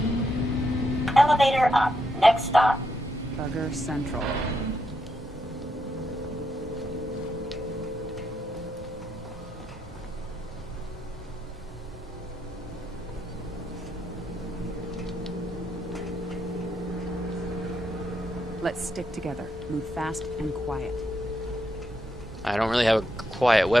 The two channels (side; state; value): both; normal; correlation 0.80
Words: Elevator up. Next stop. Bugger Central. Let's stick together. Move fast and quiet. I don't really have a quiet